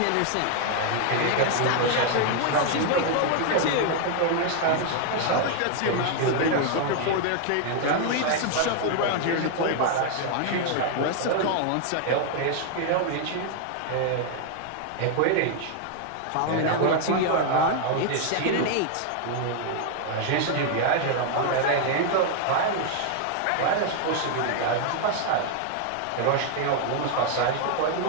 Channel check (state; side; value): different; both; correlation 0.00